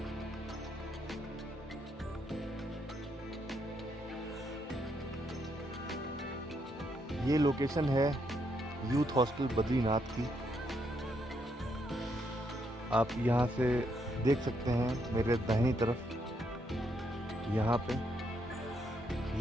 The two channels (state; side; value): normal; both; correlation 0.76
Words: ये लोकेशन है यूथ हॉस्टल बद्रीनाथ की। आप यहाँ से देख सकते हैं मेरे दाहिनी तरफ, यहाँ पे